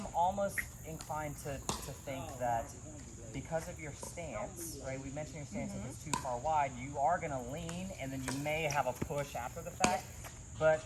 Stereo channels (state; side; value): identical; both; correlation 1.00